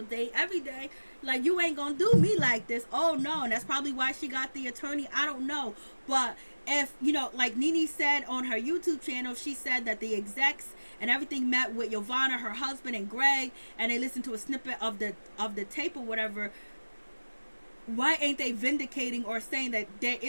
day, every day. Like, you ain't gonna do me like this. Oh no. And that's probably why she got the attorney. I don't know. But if, you know, like Nene said on her YouTube channel, she said that the execs and everything met with Yovana, her husband, and Greg, and they listened to a snippet of the tape or whatever. Why ain't they vindicating or saying that there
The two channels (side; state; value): both; inverted; correlation -1.00